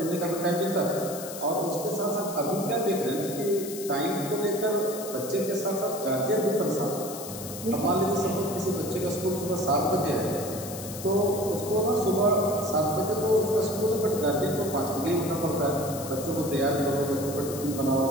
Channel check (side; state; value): left; noise; hiss, 11 dB below the sound